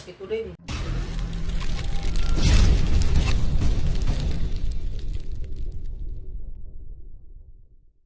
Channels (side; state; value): both; identical; correlation 1.00